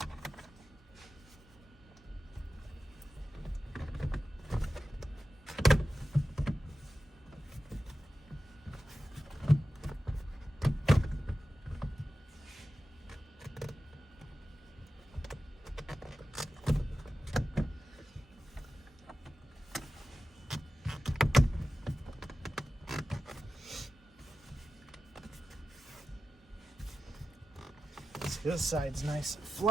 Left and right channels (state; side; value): normal; both; correlation 0.93